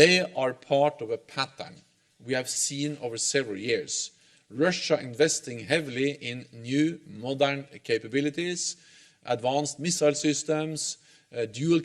are part of a pattern we have seen over several years. Russia investing heavily in new modern capabilities, advanced missile systems,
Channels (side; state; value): both; identical; correlation 1.00